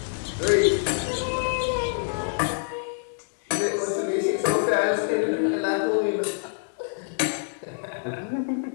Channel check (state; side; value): silent; right; digital silence